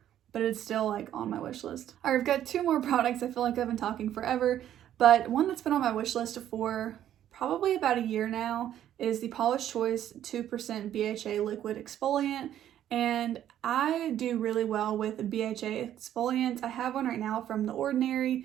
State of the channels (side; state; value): left; quieter; 11.3 dB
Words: but it's still like on my wish list. All right, I've got two more products. I feel like I've been talking forever, but one that's been on my wish list for probably about a year now is the Paula's Choice 2% BHA Liquid Exfoliant. And I do really well with BHA exfoliants. I have one right now from The